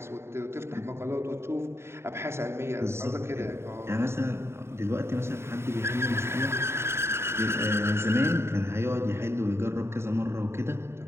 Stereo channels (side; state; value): left; late; 0.12 ms